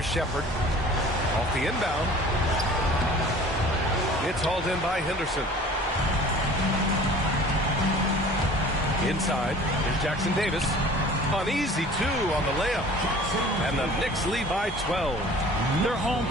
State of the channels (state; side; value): normal; both; correlation 0.46